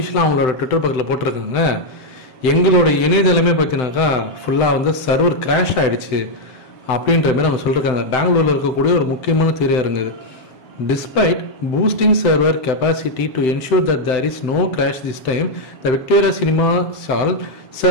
அவங்களோட ட்விட்டர் பக்கத்தில் போட்டிருக்காங்க, எங்களோட இணையதளமே பார்த்தீங்கன்னாக்கா ஃபுல்லாக வந்து சர்வர் கிராஷ் ஆகிடுச்சு அப்படின்ற மாதிரி அவங்க சொல்லியிருக்காங்க. பெங்களூரில் இருக்கக்கூடிய ஒரு முக்கியமான திரையரங்கு இது. Despite boosting server capacity to ensure that there is no crash this time, the Victoria Cinema Hall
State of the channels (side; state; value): right; late; 7.8 ms